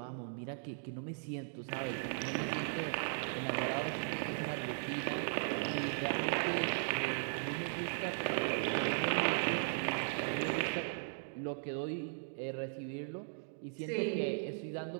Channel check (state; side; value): silent; left; digital silence